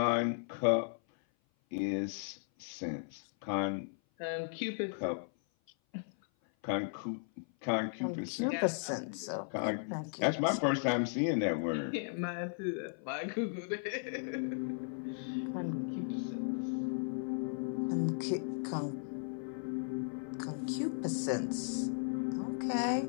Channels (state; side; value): silent; right; 54 dB below the other